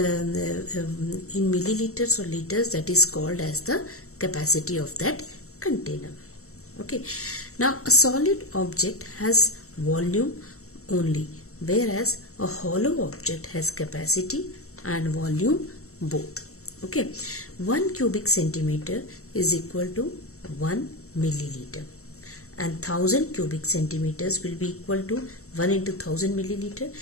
milliliters or liters, that is called as the capacity of that container. Okay. Now a solid object has volume only, whereas a hollow object has capacity and volume both. Okay. 1 cubic centimeter is equal to 1 milliliter, and 1000 cubic centimeters will be equal to 1 into 1000 milliliter,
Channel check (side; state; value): right; late; 0.63 ms